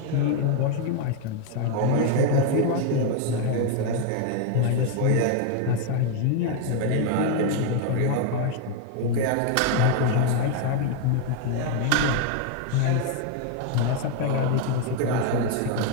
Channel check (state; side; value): different; both; correlation 0.01